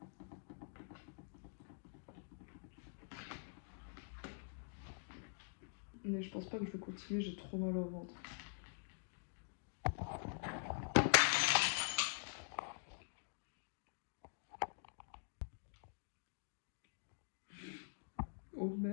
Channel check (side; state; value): right; silent; digital silence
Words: Mais je pense pas que je vais continuer, j'ai trop mal au ventre. Oh